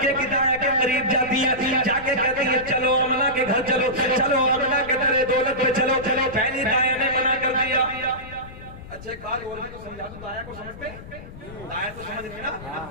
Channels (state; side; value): noise; left; rumble, 15 dB below the sound